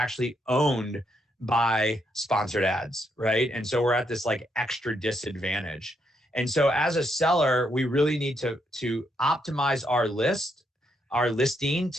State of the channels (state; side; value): normal; both; correlation 0.77